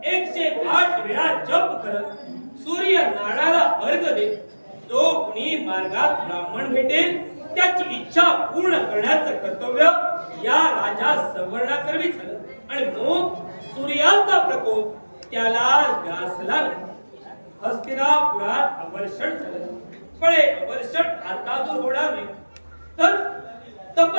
108 वेळा जप करत सूर्य नाडाला अर्घ देत जो कुणी मार्गात ब्राह्मण भेटेल त्याची इच्छा पूर्ण करण्याचं कर्तव्य या राजा संवर्णाकरवी झालं, आणि म्हणून सूर्याचा प्रकोप त्याला ग्रासला नाही. हस्तिनापुरात अवर्षण झालं, पण हे अवर्षण आता दूर होणार नाही, तर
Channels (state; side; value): inverted; both; correlation -1.00